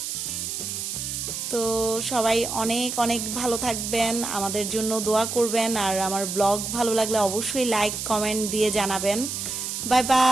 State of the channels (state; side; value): noise; right; hiss, 4 dB below the sound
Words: তো সবাই অনেক অনেক ভালো থাকবেন, আমাদের জন্য দোয়া করবেন, আর আমার ব্লগ ভালো লাগলে অবশ্যই লাইক কমেন্ট দিয়ে জানাবেন। Bye